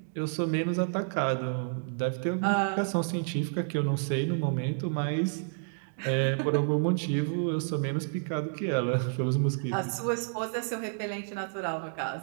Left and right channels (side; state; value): left; silent; digital silence